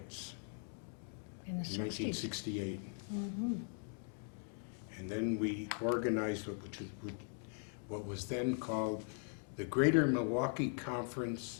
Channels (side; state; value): right; silent; 51 dB below the other